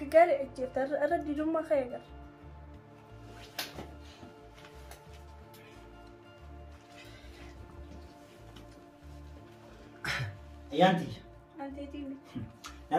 جفت أرد ديرما خير Ayyaanti. أنت تيجي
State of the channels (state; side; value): identical; both; correlation 1.00